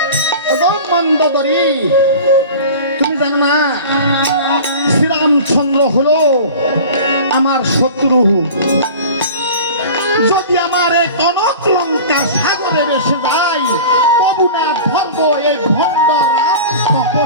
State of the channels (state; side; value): inverted; both; correlation -0.37